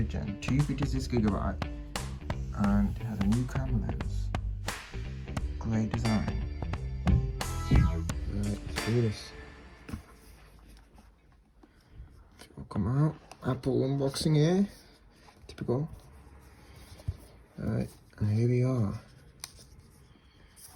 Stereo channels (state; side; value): identical; both; correlation 1.00